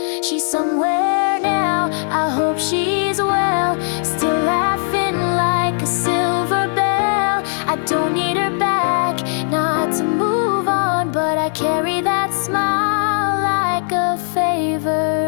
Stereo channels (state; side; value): silent; right; 66 dB below the other